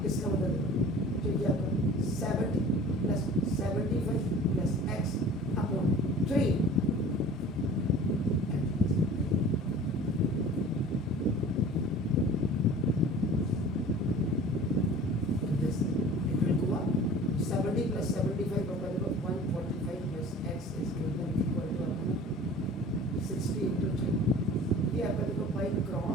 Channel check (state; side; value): normal; both; correlation 0.43